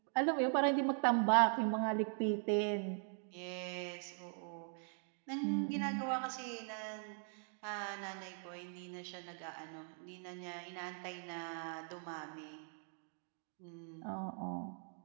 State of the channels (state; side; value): silent; left; 50 dB below the other